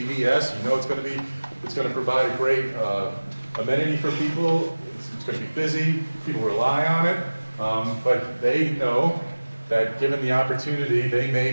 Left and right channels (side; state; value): both; inverted; correlation -1.00